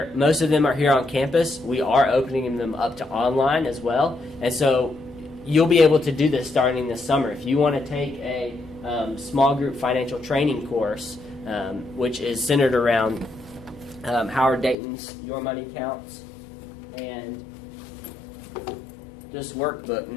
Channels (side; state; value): right; drops out; at 14.8 s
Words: most of them are here on campus, we are opening them up to online as well. And so you'll be able to do this starting this summer. If you want to take a small group financial training course, which is centered around Howard Dayton's Your Money Counts, and this workbook,